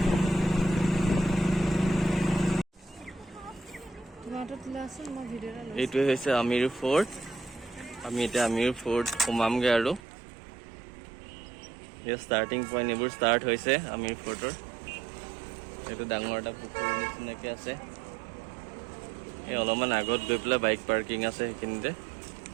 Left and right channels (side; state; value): left; drops out; at 10.0 s